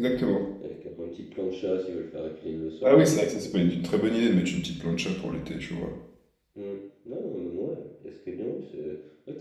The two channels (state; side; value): identical; both; correlation 1.00